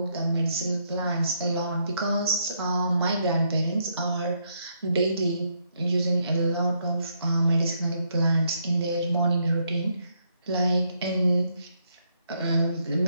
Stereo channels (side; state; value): both; inverted; correlation -0.75